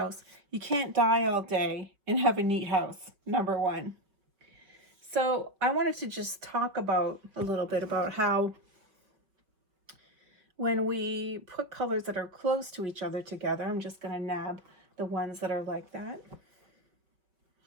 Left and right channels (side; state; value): left; late; 5.4 ms